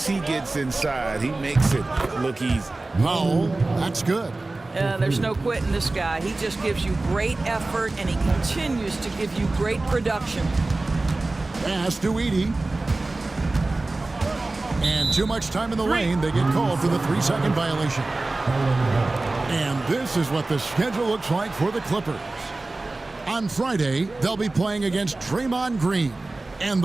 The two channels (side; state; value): left; quieter; 3.1 dB